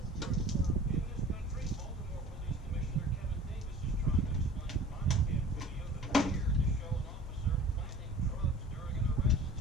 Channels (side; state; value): both; normal; correlation 0.44